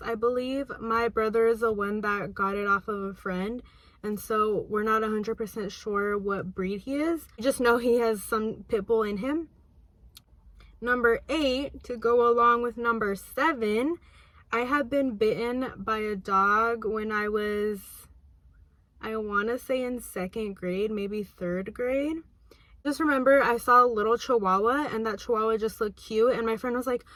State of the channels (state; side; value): identical; both; correlation 1.00